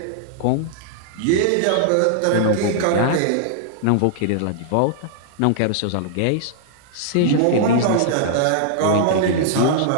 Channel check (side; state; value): both; different; correlation -0.01